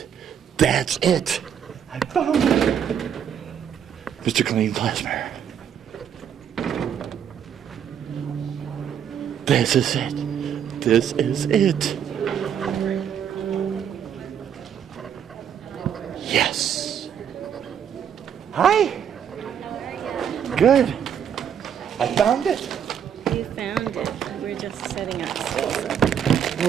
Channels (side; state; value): left; quieter; 8.6 dB